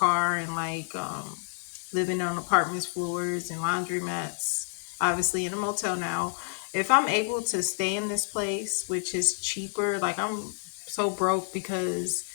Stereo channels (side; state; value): right; silent; 59 dB below the other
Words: and like living on apartments floors and laundromats. Obviously in a motel now. If I'm able to stay in this place, which is cheaper, like I'm so broke because